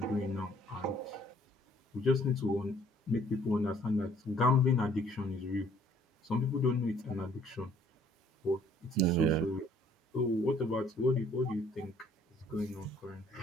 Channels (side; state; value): both; normal; correlation 0.59